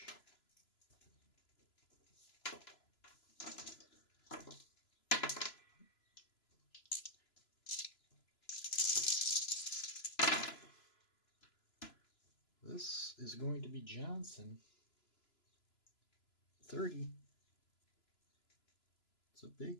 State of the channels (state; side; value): late; right; 3.0 ms